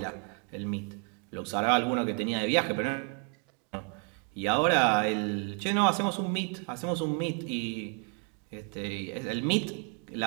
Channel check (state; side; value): quieter; left; 38.0 dB